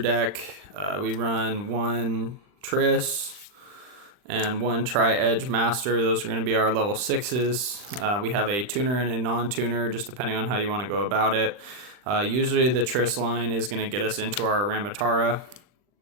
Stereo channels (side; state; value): left; late; 39 ms